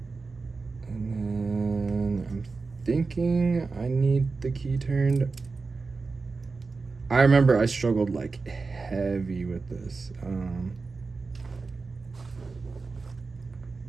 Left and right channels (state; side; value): quieter; left; 4.2 dB